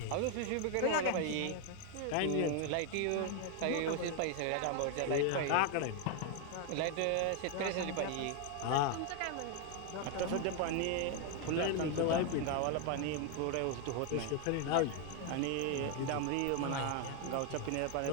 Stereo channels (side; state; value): both; different; correlation 0.01